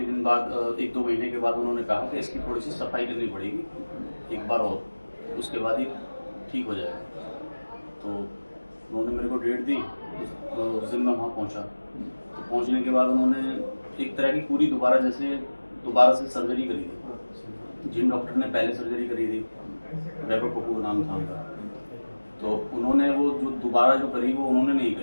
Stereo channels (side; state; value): both; inverted; correlation -1.00